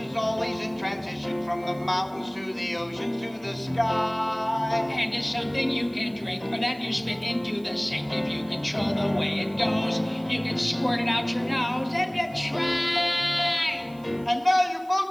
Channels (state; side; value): noise; right; hiss, 27 dB below the sound